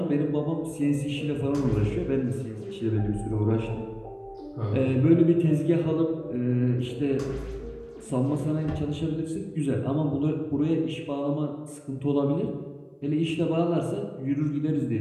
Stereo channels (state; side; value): identical; both; correlation 1.00